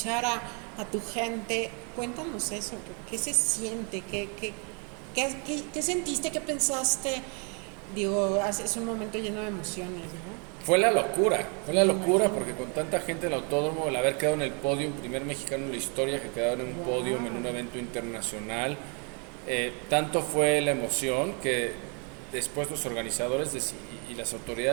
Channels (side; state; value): left; quieter; 36.4 dB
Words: a tu gente, cuéntanos eso, ¿qué se siente? ¿Qué sentiste? ¿Qué pensaste? Digo, es un momento lleno de emociones, ¿no? fue la locura porque con tanta gente en el autódromo, el haber quedado en el podio, primer mexicano en la historia que quedaba en un podio en un evento internacional, tanto fue la emoción que después los organizadores y las